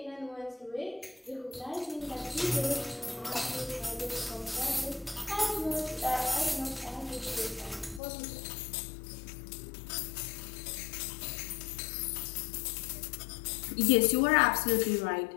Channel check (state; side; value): drops out; right; at 8.0 s